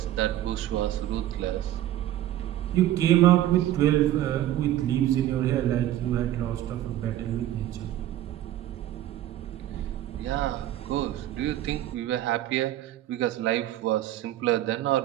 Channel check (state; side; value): quieter; left; 13.2 dB